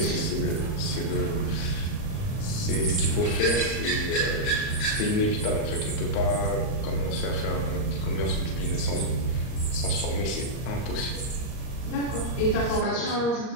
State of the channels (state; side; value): late; right; 38 ms